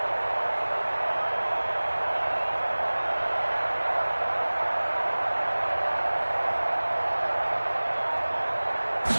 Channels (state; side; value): inverted; both; correlation -1.00